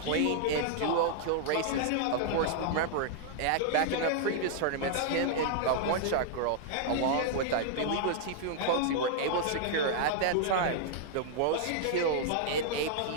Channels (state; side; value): different; both; correlation -0.01